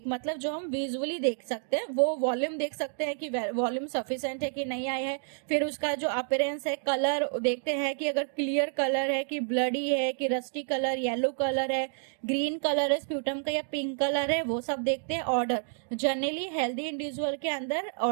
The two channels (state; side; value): silent; left; digital silence